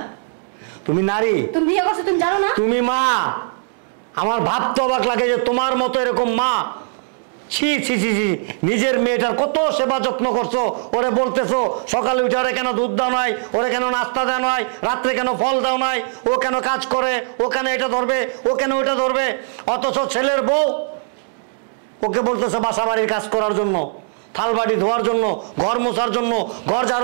তুমি নারী, তুমি বিয়ে করছো তুমি জানো না? তুমি মা। আমার ভাবতে অবাক লাগে যে তোমার মতো এরকম মা, ছি ছি ছি ছি, নিজের মেয়েটার কত সেবা যত্ন করছো। ওরে বলতেছো সকালে উঠে ওরে কেন দুধ দাও নাই, ওরে কেন নাস্তা দেওয়া নাই, রাত্রে কেন ফল দাও নাই, ও কেন কাজ করে, ও কেন এটা ধরবে, ও কেন ওইটা ধরবে। অথচ ছেলের বউ ওকে বলতেছে বাসা বাড়ির কাজ করার জন্য, থাল বাড়ি ধোয়ার জন্য, ঘর মোছার জন্য, ঘর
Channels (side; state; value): left; silent; digital silence